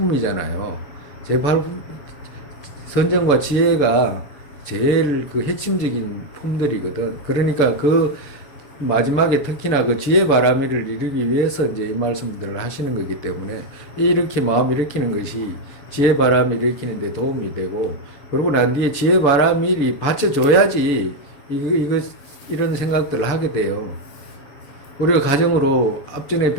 선정과 지혜가 제일 그 핵심적인 품들이거든. 그러니까 그 마지막에 특히나 그 지혜 바람이를 이루기 위해서 이제 이 말씀들을 하시는 거기 때문에 이렇게 마음 일으키는 것이 지혜 바람을 일으키는 데 도움이 되고, 그러고 난 뒤에 지혜 바람일이 받쳐줘야지 이런 생각들을 하게 돼요. 우리가 가정으로 앞전에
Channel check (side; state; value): right; late; 6.9 ms